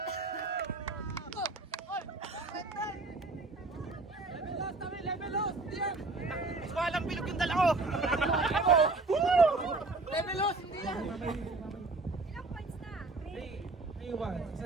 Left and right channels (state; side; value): quieter; left; 3.3 dB